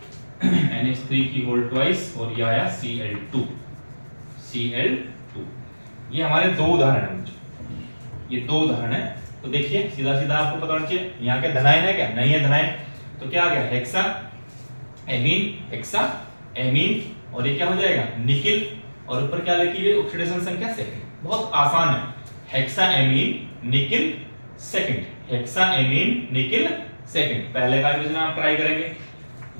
की होल ट्वाइस, और ये आया Cl2। ये हमारे 2 उदाहरण हैं, ये 2 उदाहरण है। तो देखिए सीधा आपको पता होना चाहिए यहाँ के धनायन है क्या? नहीं है धनायन। तो क्या आ गया? हेक्सा एमीन, और ये क्या हो जाएगा? निकिल, और ऊपर क्या लिखी है? ऑक्सीडेशन संख्या सेकंड। बहुत आसान है, hexa amine nickel second, hexa amine nickel second. पहले का भी आप ट्राई करेंगे,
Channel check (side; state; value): both; inverted; correlation -1.00